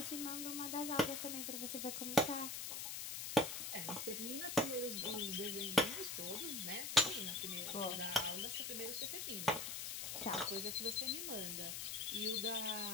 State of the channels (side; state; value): left; noise; hiss, 4 dB below the sound